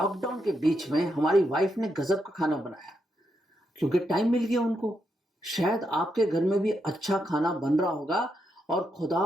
के बीच में हमारी वाइफ ने गजब का खाना बनाया क्योंकि टाइम मिल गया उनको। शायद आपके घर में भी अच्छा खाना बन रहा होगा और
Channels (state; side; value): normal; both; correlation 0.82